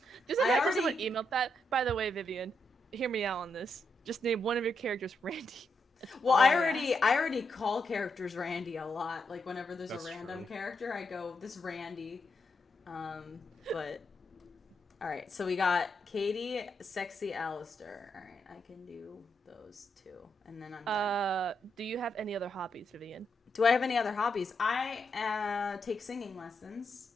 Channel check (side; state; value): both; normal; correlation 0.81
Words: Just I like that person already- would email that. By the way, Vivian, hear me out on this. Just name one of your characters Randy. Well, all I I already call characters Randy a lot. Like whenever there's That's a random true. character, I go this Randy. But all right, so we got Katie, sexy Alistair. All right, I can do those two, and then I'm done. Do you have any other hobbies, Vivian? Do I have any other hobbies? I take singing lessons,